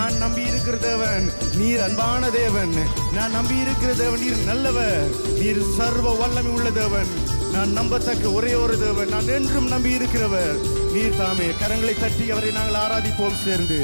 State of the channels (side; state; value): both; inverted; correlation -1.00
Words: நம்பி இருக்கிற தேவன் நீர் அன்பான தேவன். நான் நம்பி இருக்கிற தேவன் நீர் நல்லவர். நீர் சர்வ வல்லமை உள்ள தேவன். நான் நம்பத்தக்க ஒரே ஒரு தேவன். நான் என்றும் நம்பி இருக்கிறவர் நீர் தாமே. கரங்களை தட்டி அவரை நாங்கள் ஆராதிப்போம் சேர்ந்து.